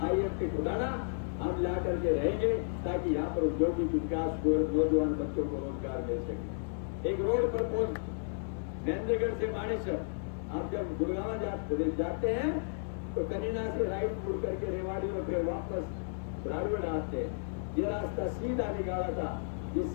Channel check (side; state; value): right; silent; digital silence